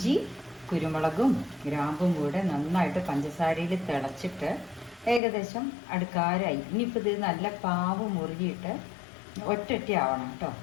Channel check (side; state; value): right; drops out; at 5.2 s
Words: കുരുമുളകും ഗ്രാമ്പും കൂടെ നന്നായിട്ട് പഞ്ചസാരയിൽ തിളച്ചിട്ട് ഏകദേശം അടുക്കാരായി. ഇനിയിപ്പോൾ ഇത് നല്ല പാവ് മുറുകിയിട്ട് ഒറ്റ ആവണം കേട്ടോ.